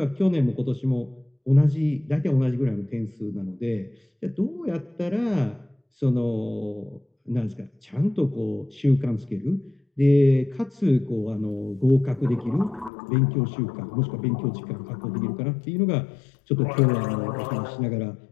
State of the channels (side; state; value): right; drops out; at 12.9 s